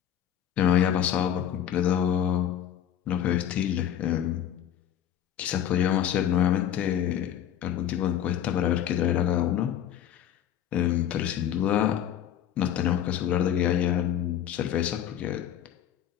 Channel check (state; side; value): quieter; right; 10.2 dB